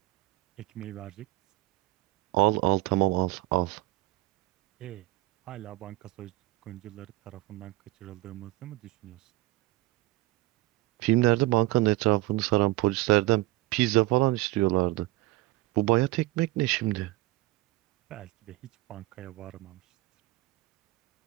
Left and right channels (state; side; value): quieter; left; 19.2 dB